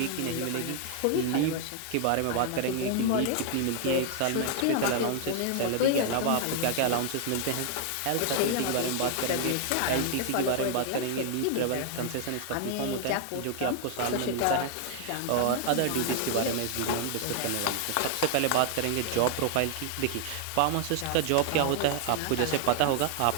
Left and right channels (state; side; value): different; both; correlation 0.00